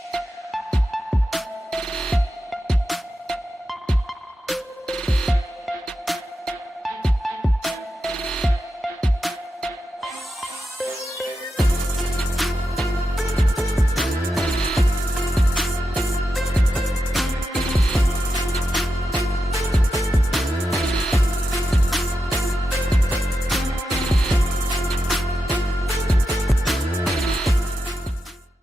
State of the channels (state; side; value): normal; both; correlation 0.88